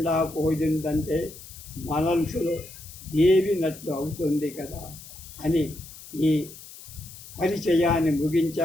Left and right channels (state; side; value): noise; left; hiss, 16 dB below the sound